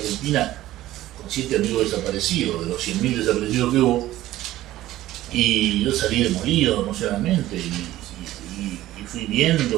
con 7 amigos desaparecidos, de los 100.000 desaparecidos que hubo, y yo salí demolido emocionalmente y fui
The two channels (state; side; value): quieter; left; 15.1 dB